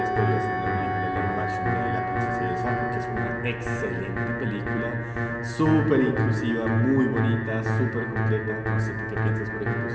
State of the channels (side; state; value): both; identical; correlation 1.00